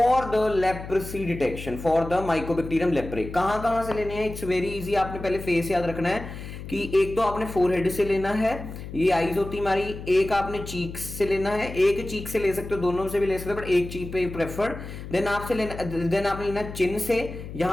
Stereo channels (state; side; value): noise; left; hum, 10 dB below the sound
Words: the leprosy detection for the Mycobacterium leprae. कहां से लेने हैं? It's very easy. आपने पहले फेस याद रखना है कि एक तो आपने फोरहेड से लेना है, ये आईज होती हमारी. एक आपने चीक से लेना है, एक चीक से ले सकते हो, दोनों से भी ले सकते हो, बट एक चीक पे प्रेफर्ड. देन आपने लेना चिन से.